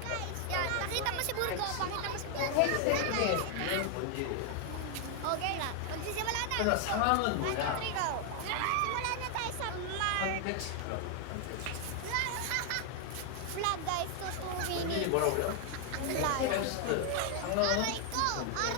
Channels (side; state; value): both; different; correlation 0.00